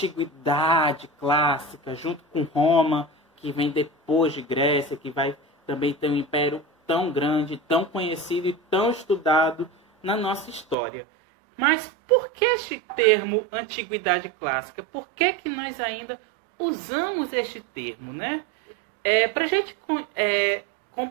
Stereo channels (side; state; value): left; drops out; at 10.8 s